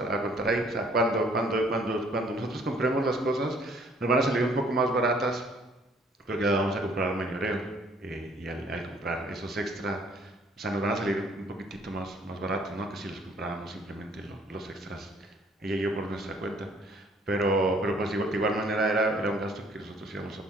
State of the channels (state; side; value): normal; both; correlation 0.60